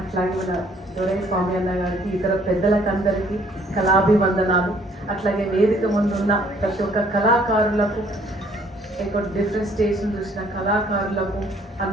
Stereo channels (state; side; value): normal; both; correlation 0.61